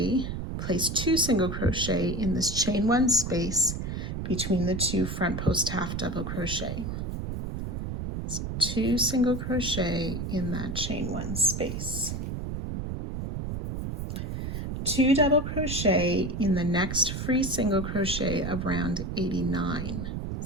place 2 single crochet in this chain 1 space between the 2 front post half double crochet. So 2 single crochet in that chain 1 space. 2 double crochet in the next free single crochet of round 89.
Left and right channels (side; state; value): right; noise; rumble, 4 dB below the sound